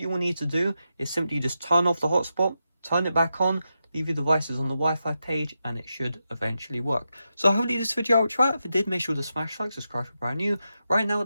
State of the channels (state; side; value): inverted; both; correlation -0.88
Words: you will need to do is simply just turn off the hotspot, turn it back on, leave your devices on the Wi-Fi page, and it should eventually work. So hopefully this video helped you out. If it did, make sure to smash like, subscribe if you're brand new. Right now